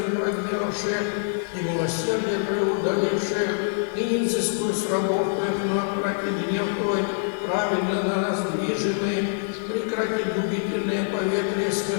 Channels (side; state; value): right; silent; 61 dB below the other